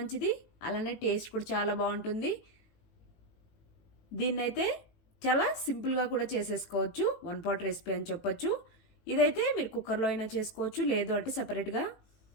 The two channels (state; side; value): late; right; 18 ms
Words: అలానే టేస్ట్ కూడా చాలా బాగుంటుంది. దీన్నైతే చాలా సింపుల్గా కూడా చేసేసుకోవచ్చు, వన్ పాట్ రెసిపీ అని చెప్పొచ్చు. ఇదైతే మీరు కుక్కర్లో అయినా చేసుకోవచ్చు, లేదు అంటే సపరేట్గా